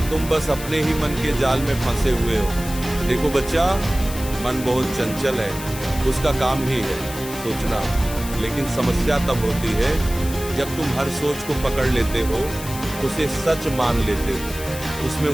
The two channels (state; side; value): noise; left; hiss, 11 dB below the sound